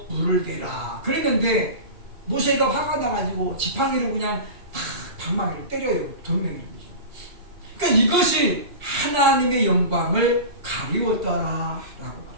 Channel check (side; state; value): left; late; 2.4 ms